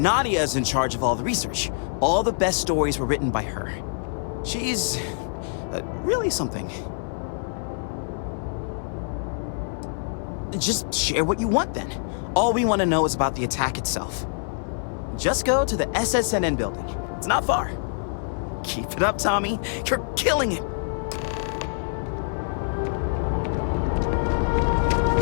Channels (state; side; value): silent; right; 58 dB below the other